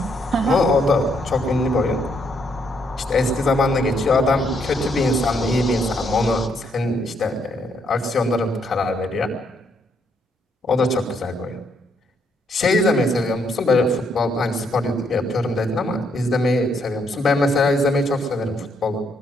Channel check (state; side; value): normal; both; correlation 0.73